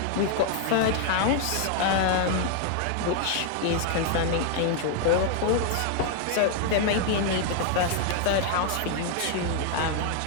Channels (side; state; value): both; different; correlation 0.00